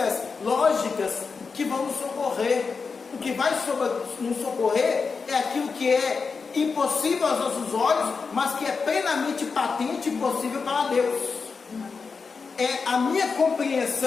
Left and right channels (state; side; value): quieter; right; 5.0 dB